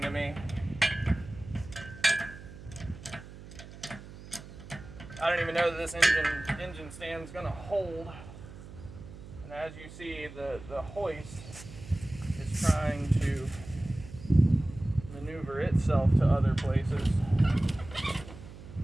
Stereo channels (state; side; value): noise; right; hum, 15 dB below the sound